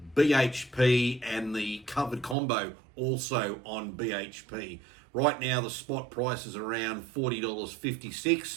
BHP and the covered combo also on BHP. Right now, the spot price is around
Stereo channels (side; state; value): left; drops out; at 2.4 s